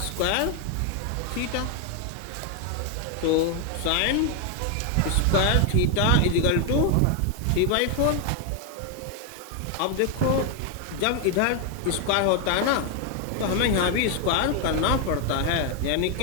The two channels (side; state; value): both; different; correlation 0.01